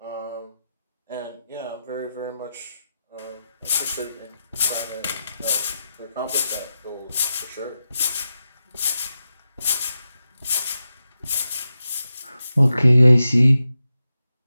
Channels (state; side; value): inverted; both; correlation -0.90